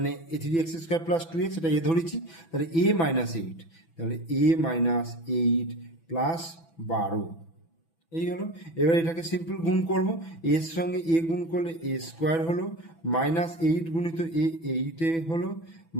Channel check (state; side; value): late; right; 6.0 ms